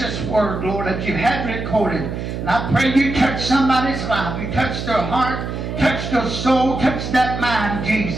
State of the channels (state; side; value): noise; right; hum, 5 dB below the sound